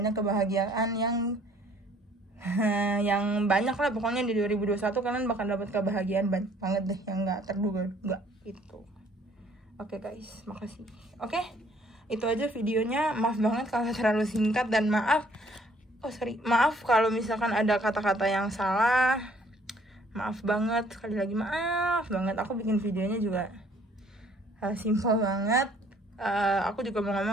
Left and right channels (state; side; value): normal; both; correlation 0.60